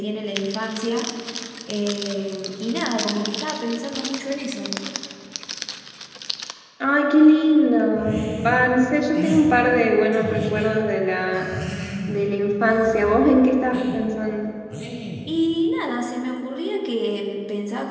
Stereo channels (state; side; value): identical; both; correlation 1.00